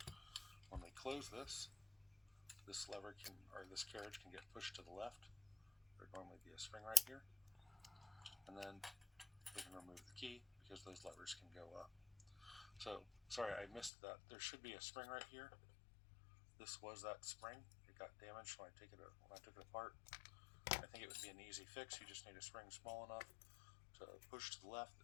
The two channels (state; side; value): drops out; right; at 13.9 s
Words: When we close this, this carriage can get pushed to the left. There'd normally be a spring right here, and then we can remove the key because those levers can go up. So, sorry, I missed that. There should be a spring right here. This was that spring. It got damaged when I took it apart. I think it would be an easy fix. You just need a spring small enough to push to the left.